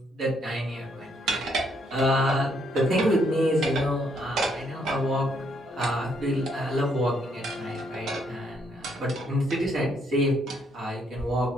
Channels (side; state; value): both; normal; correlation 0.72